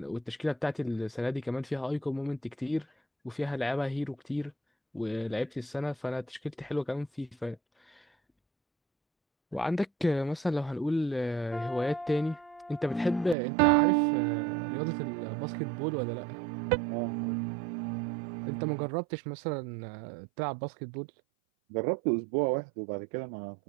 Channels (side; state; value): left; drops out; at 13.4 s